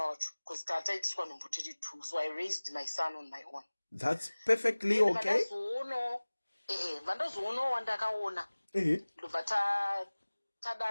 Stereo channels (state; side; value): inverted; both; correlation -1.00